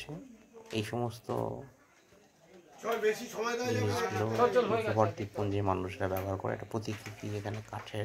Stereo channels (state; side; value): identical; both; correlation 1.00